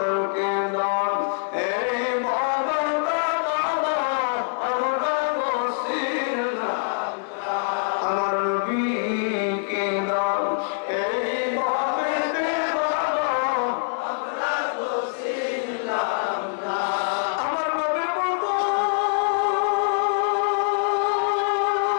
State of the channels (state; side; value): silent; right; digital silence